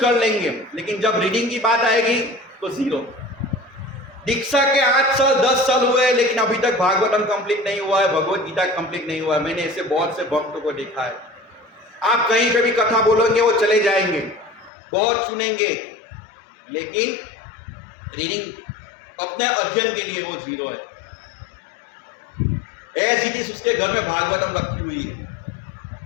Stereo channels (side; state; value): right; drops out; at 14.7 s